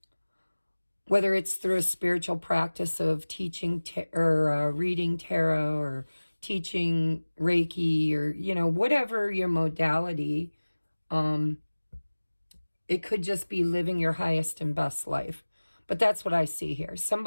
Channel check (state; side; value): inverted; both; correlation -1.00